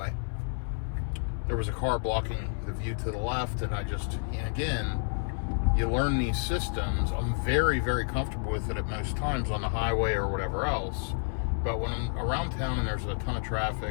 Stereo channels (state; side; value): silent; right; 58 dB below the other